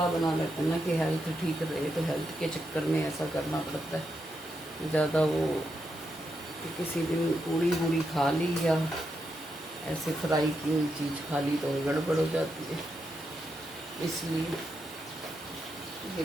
बना लेते हैं ना कि हेल्थ ठीक रहे, तो हेल्थ के चक्कर में ऐसा करना पड़ता है। ज़्यादा वो कि किसी दिन पूड़ी वूड़ी खा ली या ऐसे फ्राई की हुई चीज़ खा ली तो गड़बड़ हो जाती है, इसलिए। ये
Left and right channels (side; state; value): both; normal; correlation 0.83